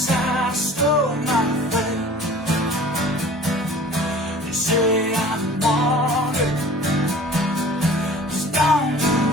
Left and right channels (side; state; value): both; normal; correlation 0.46